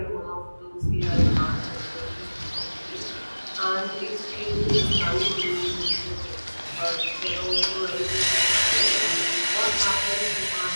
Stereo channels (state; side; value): inverted; both; correlation -1.00